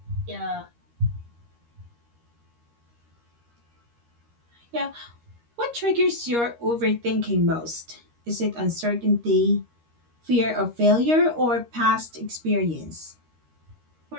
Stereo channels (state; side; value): late; left; 13 ms